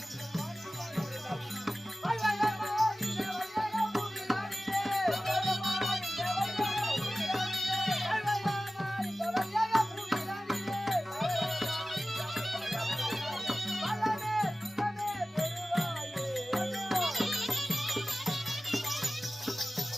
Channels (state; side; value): normal; both; correlation 0.96